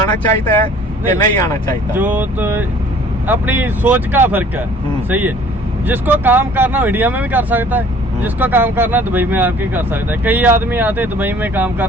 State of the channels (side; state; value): both; normal; correlation 0.53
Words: चाहिए है कि नहीं आना चाहिए? जो तो अपनी सोच का फर्क है, सही है। जिसको काम करना हो इंडिया में भी कर सकता है, जिसको काम करना दुबई में आके कर सकता है। कई आदमी आते दुबई में काम